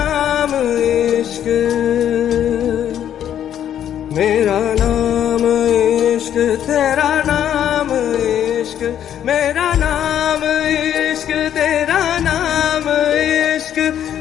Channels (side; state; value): right; quieter; 10.2 dB